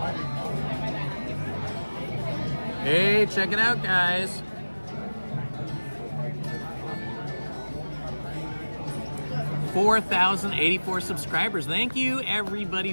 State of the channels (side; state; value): both; inverted; correlation -1.00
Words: Hey, check it out, guys. $4,084 subscribers. Thank you, everybody